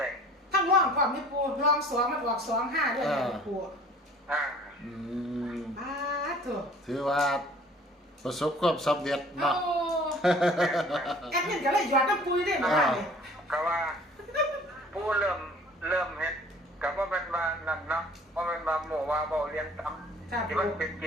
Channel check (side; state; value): both; normal; correlation 0.50